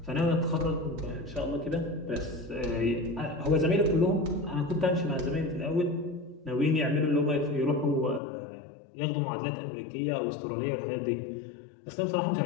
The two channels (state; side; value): drops out; right; at 8.2 s